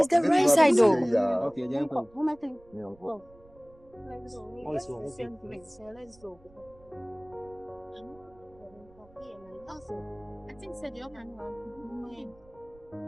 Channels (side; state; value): right; noise; rumble, 27 dB below the sound